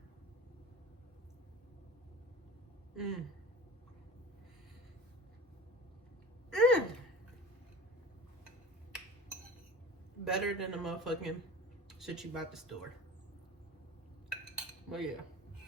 Better than the motherfucking shit you bought at the store. But yeah,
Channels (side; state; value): both; normal; correlation 0.37